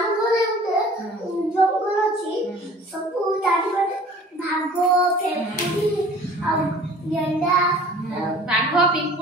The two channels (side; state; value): both; normal; correlation 0.48